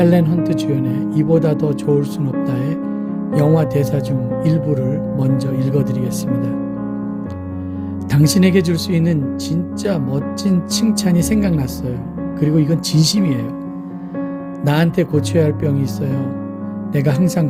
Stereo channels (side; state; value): both; identical; correlation 1.00